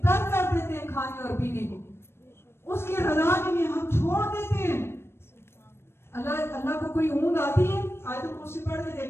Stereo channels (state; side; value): late; right; 0.12 ms